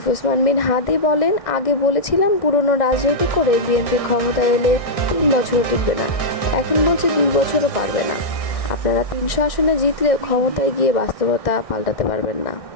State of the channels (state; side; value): late; right; 1.6 ms